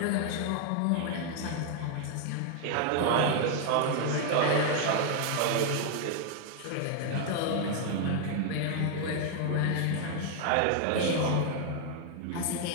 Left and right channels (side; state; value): both; different; correlation 0.00